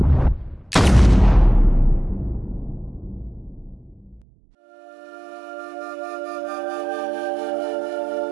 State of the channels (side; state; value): left; drops out; at 4.2 s